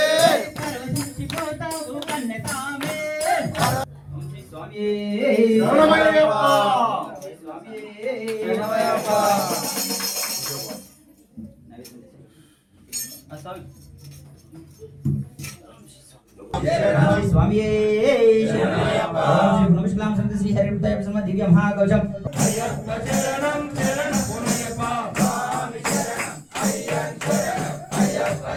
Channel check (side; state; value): both; identical; correlation 1.00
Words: పరవశించిపోతావు కన్నసామి స్వామి శరణమయ్యప్ప. శరణమయ్యప్ప. స్వామి నమస్కారం సంత శ్రీ హరిమతాయ ప్రసన్న దివ్య మహాకవచం